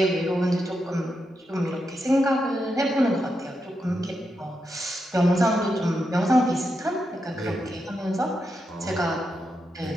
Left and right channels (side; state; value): both; normal; correlation 0.85